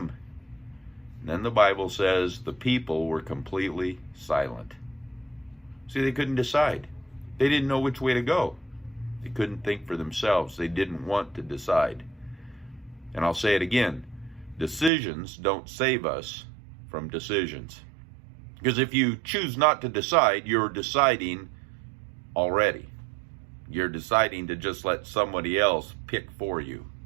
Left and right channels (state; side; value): drops out; left; at 14.9 s